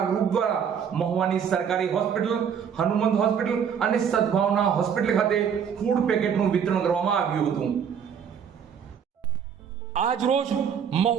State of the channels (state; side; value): quieter; left; 7.6 dB